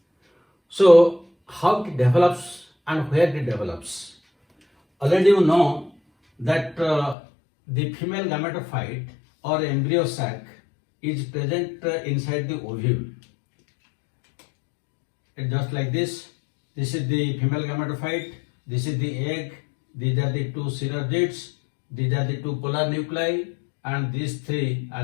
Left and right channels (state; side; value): drops out; right; at 7.2 s